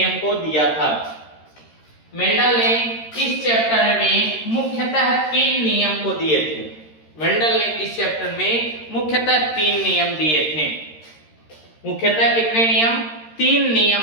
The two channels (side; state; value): right; late; 13 ms